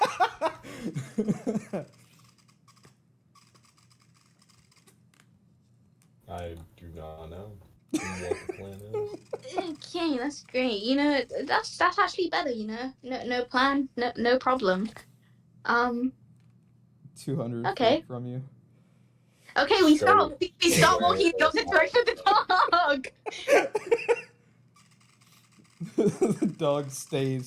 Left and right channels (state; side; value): identical; both; correlation 1.00